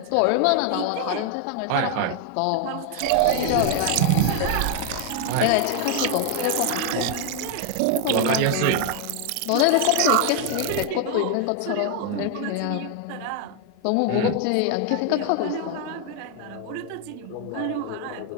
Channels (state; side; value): different; both; correlation 0.01